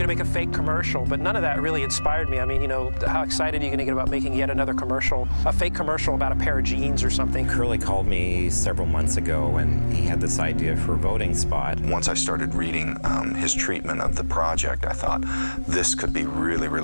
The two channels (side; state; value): both; inverted; correlation -1.00